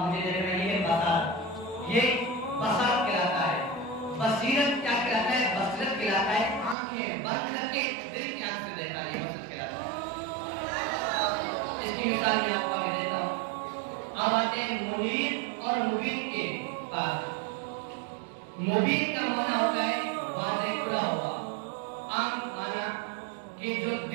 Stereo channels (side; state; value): left; drops out; at 6.8 s